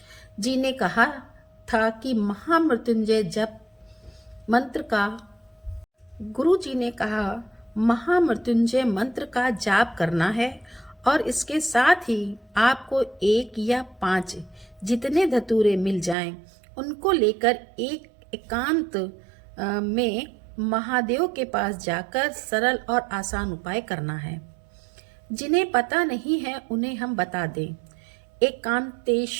जी ने कहा था कि महामृत्युंजय जप मंत्र का गुरु जी ने कहा महामृत्युंजय मंत्र का जाप करना है और इसके साथ ही आपको 1 या 5 जितने धतूरे मिल जाएं उनको लेकर एक एकांत में महादेव के पास जाकर सरल और आसान उपाय करना है। जिन्हें पता नहीं है उन्हें हम बता दें।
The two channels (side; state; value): left; drops out; at 16.2 s